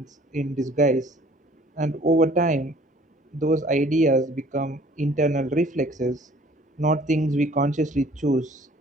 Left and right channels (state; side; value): normal; both; correlation 0.54